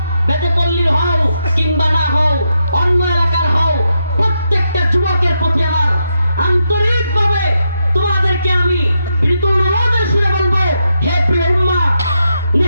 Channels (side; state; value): both; inverted; correlation -0.82